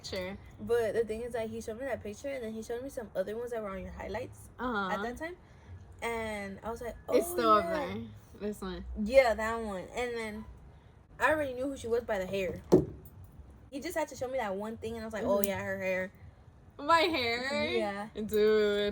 But the thing is that he showed me that picture, and then he showed me some other ones that were on your highlights at that time, and I was like, oh, it's still up there. This one. Yeah, that one. And then I already knew who she was by the hair. He just had to show me that one thing, and I was like, oh yeah, her hair. My hair? Yeah.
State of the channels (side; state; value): both; identical; correlation 1.00